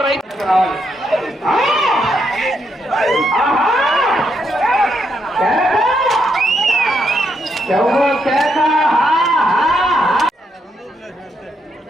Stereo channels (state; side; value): normal; both; correlation 0.78